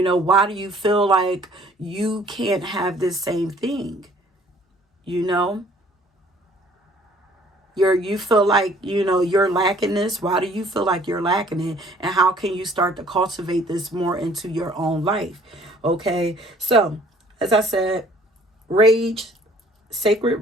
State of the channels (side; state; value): both; normal; correlation 0.57